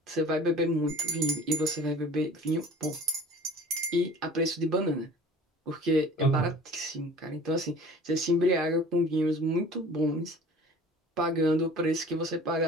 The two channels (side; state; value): both; normal; correlation 0.46